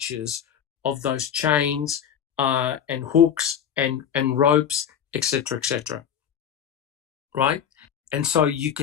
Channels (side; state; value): right; quieter; 8.6 dB